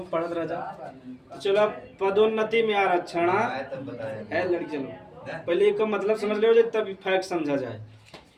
पढ़त रह जा। चलो पदोन्नति में आरक्षण है लड़की। चलो पहले एक मतलब समझ लो तब फैक्ट समझा जाए।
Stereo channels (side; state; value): both; identical; correlation 1.00